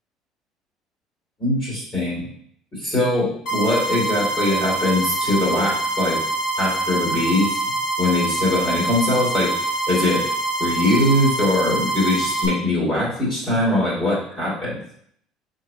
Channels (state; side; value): normal; both; correlation 0.42